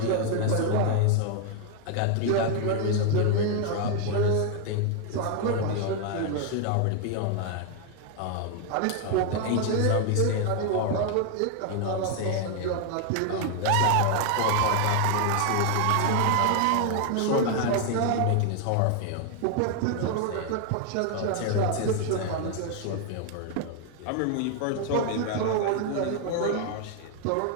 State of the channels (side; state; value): both; different; correlation 0.00